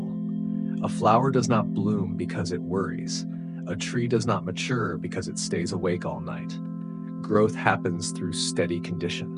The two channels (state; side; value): identical; both; correlation 1.00